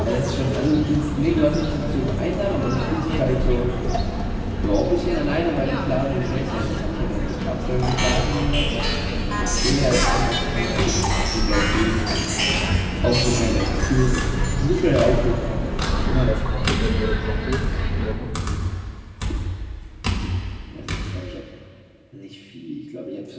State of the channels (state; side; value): identical; both; correlation 1.00